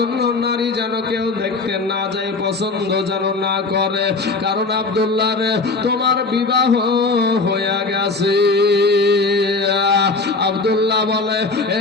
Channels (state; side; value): quieter; right; 3.7 dB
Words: নারী যেন কেউ দেখতে না যায়, পছন্দ যেন না করে, কারণ আব্দুল্লাহ রে তোমার বিবাহ হয়ে গেছে। আব্দুল্লাহ বলে,